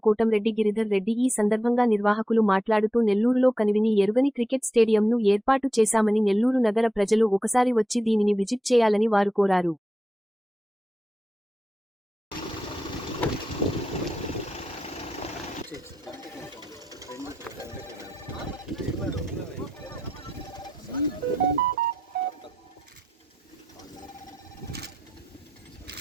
కోటంరెడ్డి గిరిధర్ రెడ్డి. ఈ సందర్భంగా నిర్వాహకులు మాట్లాడుతూ నెల్లూరులో కనివిని ఎరుగని క్రికెట్ స్టేడియంను ఏర్పాటు చేశామని, నెల్లూరు నగర ప్రజలు ఒకసారి వచ్చి దీనిని విజిట్ చేయాలని వారు కోరారు.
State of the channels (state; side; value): normal; both; correlation 0.89